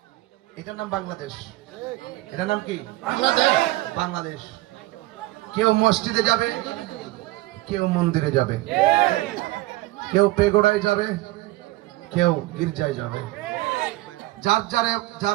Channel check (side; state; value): left; quieter; 18.4 dB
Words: এটার নাম বাংলাদেশ। এটার নাম কি? বাংলাদেশ। কেউ মসজিদে যাবে, কেউ মন্দিরে যাবে, কেউ পেগোড়ায় যাবে, কেউ গির্জায় যাবে, যার